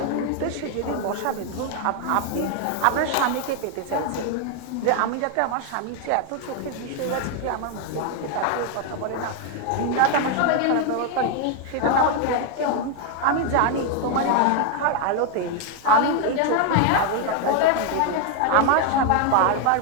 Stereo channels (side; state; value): both; different; correlation 0.01